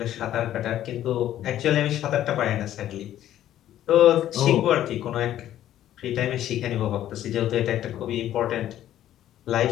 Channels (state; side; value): quieter; right; 12.2 dB